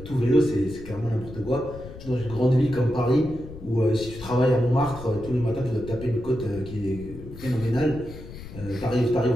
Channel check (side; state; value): left; noise; rumble, 14 dB below the sound